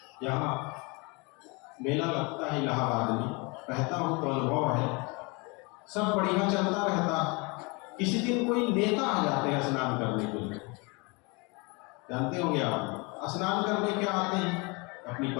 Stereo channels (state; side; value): quieter; right; 28.8 dB